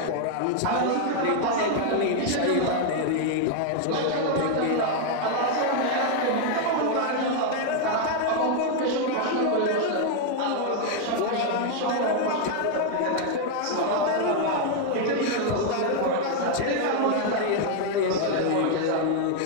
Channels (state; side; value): different; both; correlation 0.00